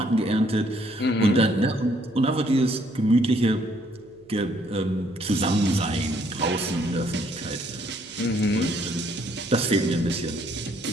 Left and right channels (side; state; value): right; noise; hum, 29 dB below the sound